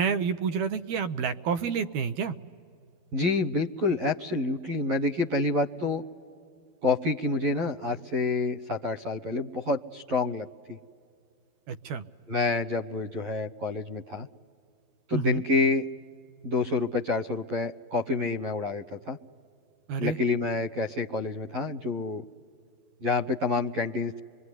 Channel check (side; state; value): left; late; 12 ms